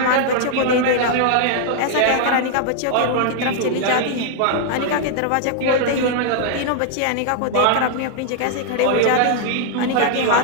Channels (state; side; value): different; both; correlation -0.01